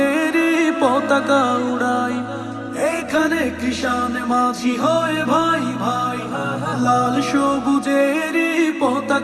পতাকা উড়াই। এইখানে কৃষাণ মাঝি হয়ে ভাই ভাই লাল সবুজেরই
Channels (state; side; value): identical; both; correlation 1.00